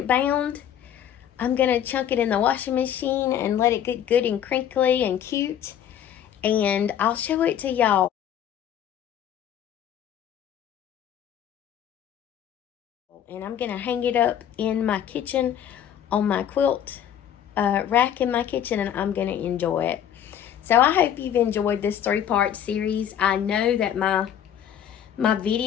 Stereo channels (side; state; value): right; quieter; 9.8 dB